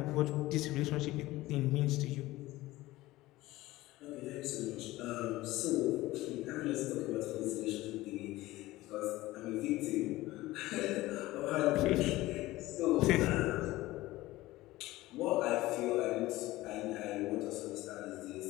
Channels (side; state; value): right; quieter; 18.0 dB